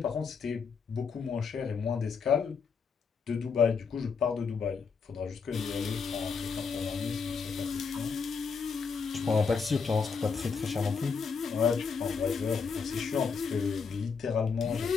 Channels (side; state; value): right; quieter; 5.5 dB